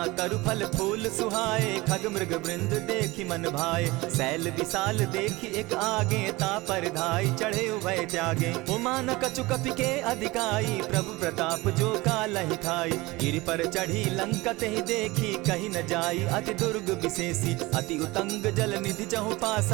तरु फल फूल सुहाए खग मृग वृंद देखी मन भाए। सैल विशाल देखी एक आगे ता पर धाई चढ़े उभय त्यागे। उमान कछु कपि के अधिकाई प्रभु प्रताप जो कालहि खाई। गिरि पर चढ़ी लंका तेहि देखी कहीं न जाई अति दुर्ग विशेषी। अति उतंग जल निधि चहु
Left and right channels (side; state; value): left; quieter; 21.6 dB